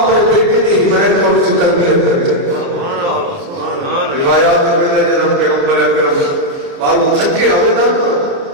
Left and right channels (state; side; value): late; left; 29 ms